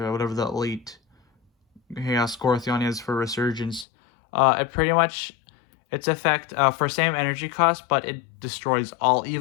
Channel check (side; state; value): right; drops out; at 3.9 s